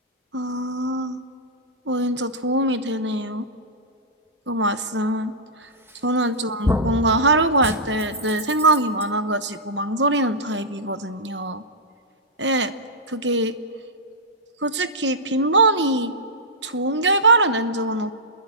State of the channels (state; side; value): normal; both; correlation -0.11